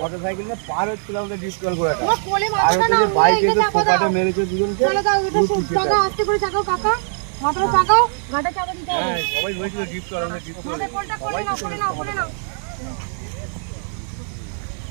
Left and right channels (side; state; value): left; silent; 65 dB below the other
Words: নিয়ে পার হচ্ছিল, আমাদের ডিসকাল করে বাইক এসে ফোকাটে মেরেছে দুজনকে। সবাই বলেছিল ডিসকাল, আমাদের ডিসকাল।